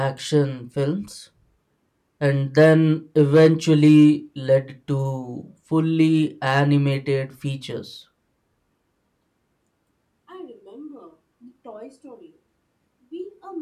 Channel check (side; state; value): both; identical; correlation 1.00